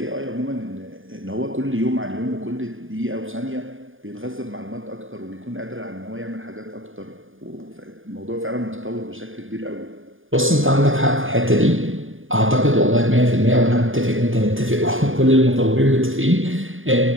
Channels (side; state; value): left; late; 0.59 ms